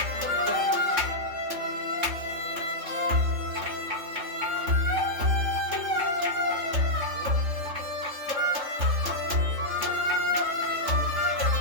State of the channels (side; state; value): left; late; 3.5 ms